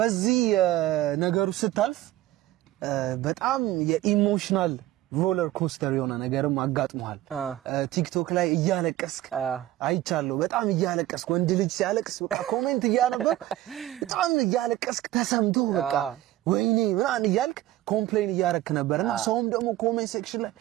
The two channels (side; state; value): left; quieter; 15.1 dB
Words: ነገሩ ስታልፍ በጣም የኢሞሽናል ሮለር ኮስተር የሆነ ነገርም አጋጥሟል ቲክቶክ ላይ እያለቀስክ አይቻለሁ በጣም እያለቀስክ ወንድ ልጅ ሲያለቅስ በቃ ኮሜንት እያነበብ በጣም እያለቀስክ ተሰምቶ በቃ ወይኔ ምናን ይያልክ ኮምፕሌን እያረክ ነበርና ሰውም ደግሞ ኮሜንት ሴክሽን ላይ